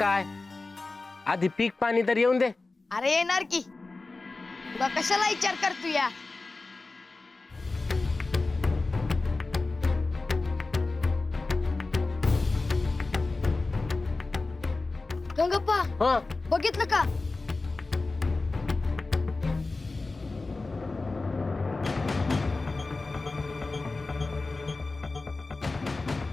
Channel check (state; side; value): quieter; right; 3.5 dB